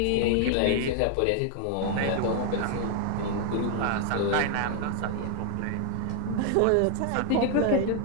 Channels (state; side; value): different; both; correlation 0.00